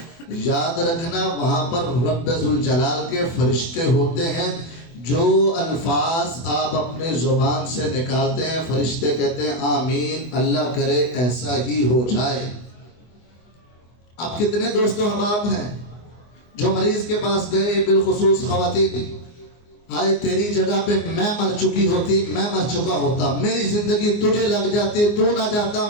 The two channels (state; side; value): late; right; 24 ms